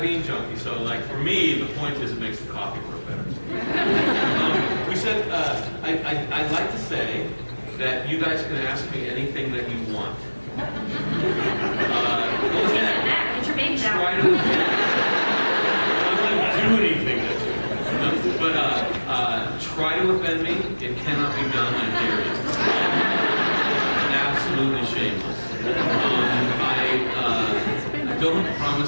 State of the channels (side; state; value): both; inverted; correlation -1.00